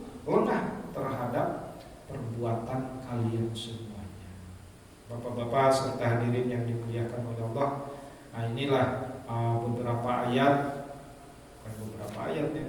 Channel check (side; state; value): both; identical; correlation 1.00